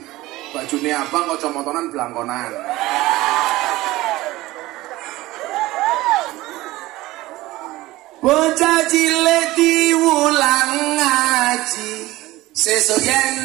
Bajune abang kacamotonan blangkonan. Bocah cilik diulang ngaji, sesuk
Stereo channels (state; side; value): quieter; left; 18.3 dB